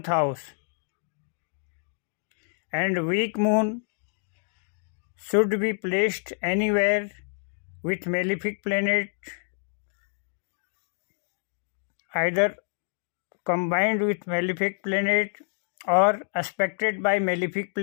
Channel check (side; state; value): right; silent; 60 dB below the other